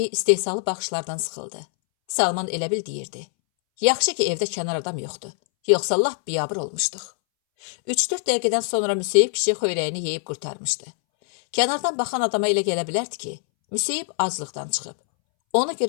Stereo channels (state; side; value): silent; right; 63 dB below the other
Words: istehsalı baxışlardan sıxıldı. Salman elə bil deyirdi. Yaxşı ki evdə kənar adam yoxdur, yoxsa lap biyabır olmuşduq. 3-4 dəqiqədən sonra Müseyib kişi xöyrəyini yeyib qurtarmışdı. Kənardan baxan adama elə gələ bilərdi ki, Müseyib aclıqdan çıxıb. Ona